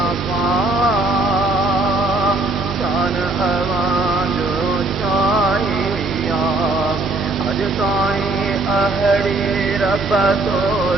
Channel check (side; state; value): left; quieter; 3.0 dB